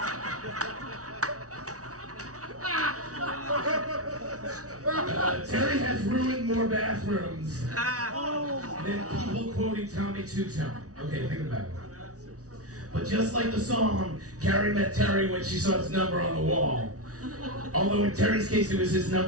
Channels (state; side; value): late; left; 0.67 ms